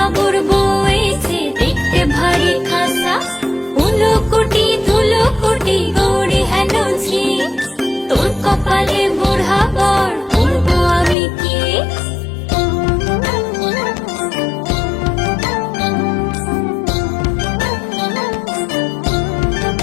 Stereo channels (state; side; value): drops out; right; at 11.2 s